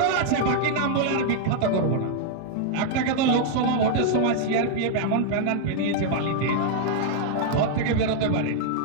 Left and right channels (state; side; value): different; both; correlation 0.00